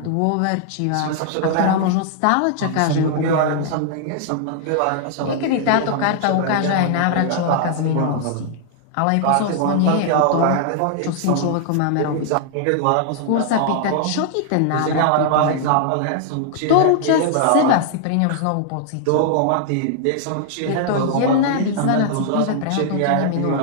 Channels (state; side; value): different; both; correlation -0.01